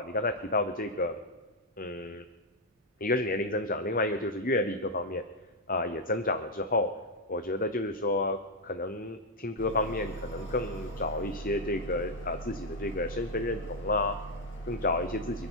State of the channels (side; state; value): both; normal; correlation 0.00